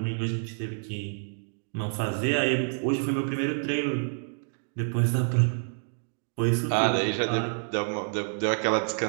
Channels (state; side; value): silent; left; digital silence